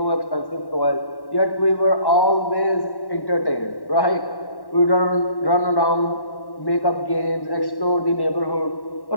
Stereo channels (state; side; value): late; right; 1.1 ms